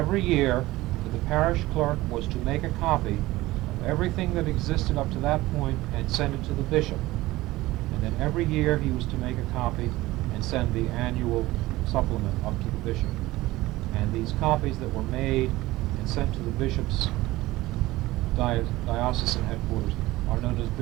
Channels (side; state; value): left; quieter; 18.3 dB